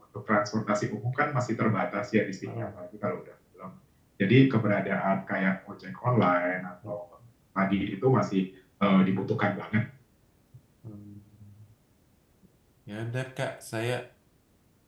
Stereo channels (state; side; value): identical; both; correlation 1.00